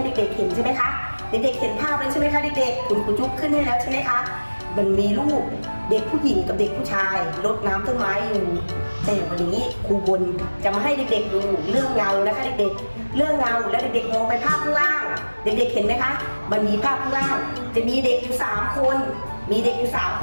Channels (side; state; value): both; inverted; correlation -1.00